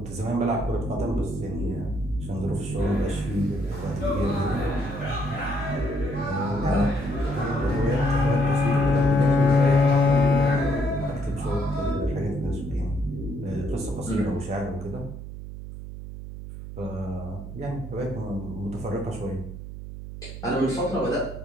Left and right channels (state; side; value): noise; right; hum, 10 dB below the sound